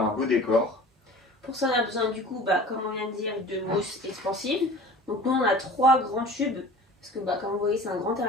un beau décor. Pour ça, on a besoin du coup, comme on vient de dire, de mousse expansive. Donc nous, on a 3 grands tubes, parce que comme vous voyez, c'est un grand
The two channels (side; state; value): both; normal; correlation 0.42